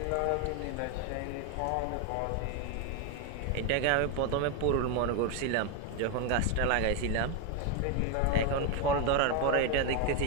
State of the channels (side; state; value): both; different; correlation 0.02